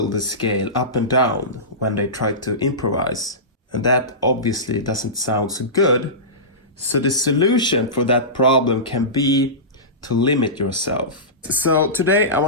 the scale up and down when they try to improvise. And that obviously doesn't sound so good. So the solution for that problem can be to limit yourself. So today I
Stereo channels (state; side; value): normal; both; correlation -0.20